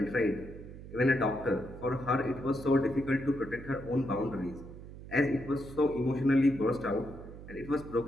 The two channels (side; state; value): right; noise; hum, 14 dB below the sound